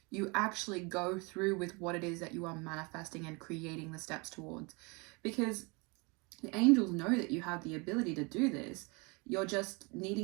you actually go through with what it is that you are manifesting and creating the steps towards. Because the angels know that you have the ability to do this. You're just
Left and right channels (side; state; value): left; quieter; 29.0 dB